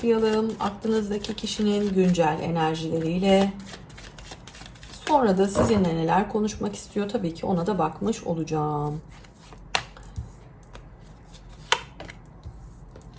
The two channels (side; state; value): both; identical; correlation 1.00